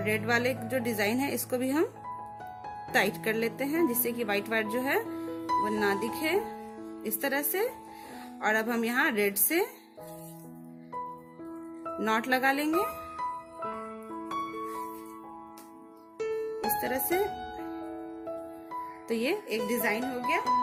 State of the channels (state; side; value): identical; both; correlation 1.00